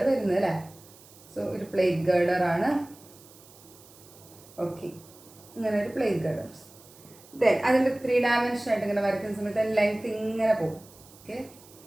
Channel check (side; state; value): right; noise; hiss, 23 dB below the sound